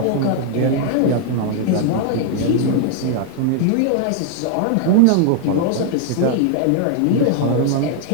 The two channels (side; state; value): both; different; correlation 0.00